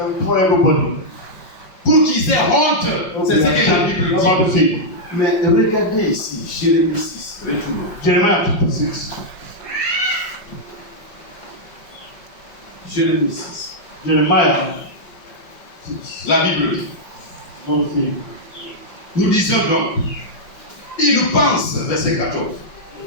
for everybody. Pour qu'ils aient honte. C'est ce que la Bible About dit. the thing. Mais regardez ici, Jérémie 6. Retournons. Jeremiah chapter 6. Jérémie 6. Jeremiah 6. La Bible dit. What is it? Nous disons donc, il pense, verset 14,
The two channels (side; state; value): right; late; 5.5 ms